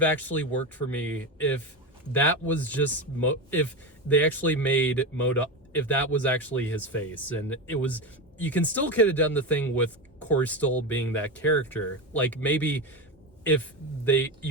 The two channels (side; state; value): both; normal; correlation 0.18